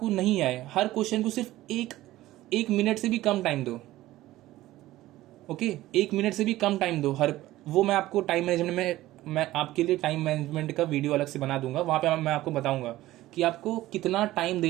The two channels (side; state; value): left; quieter; 16.1 dB